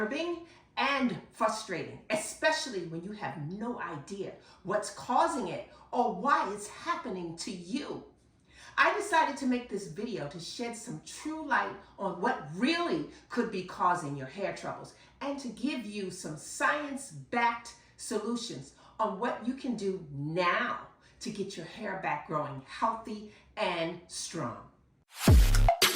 and frustrating, especially when you have no idea what's causing it or why it's happening to you. I decided to make this video to shed some true light on what really could be causing your hair troubles and to give you some science-backed solutions on what you can do now to get your hair back growing healthy and strong.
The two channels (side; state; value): both; identical; correlation 1.00